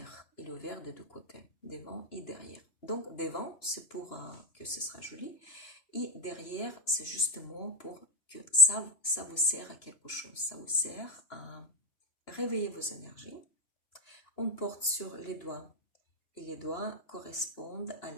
Il est ouvert des deux côtés, devant et derrière. Donc, devant, c'est pour que ce sera joli. Et derrière, c'est justement pour que ça vous sert à quelque chose. Ça vous sert à réveiller vos énergies. On porte sur les doigts. Et les doigts correspondent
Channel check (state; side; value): late; right; 2.9 ms